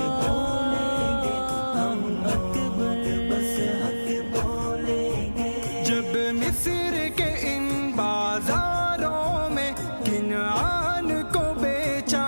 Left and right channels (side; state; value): both; inverted; correlation -1.00